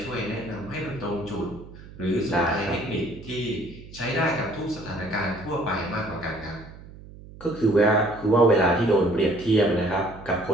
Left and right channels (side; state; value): right; noise; hum, 17 dB below the sound